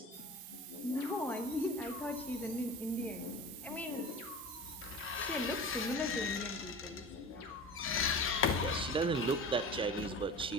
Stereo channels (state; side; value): normal; both; correlation 0.35